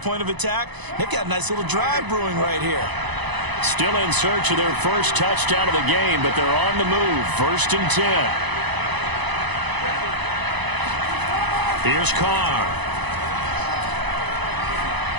of attack. They've got a nice little drive brewing right here. Still in search of their first touchdown of the game, but they're on the move. 1st and 10. Here's Carr.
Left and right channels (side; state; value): left; late; 1.0 ms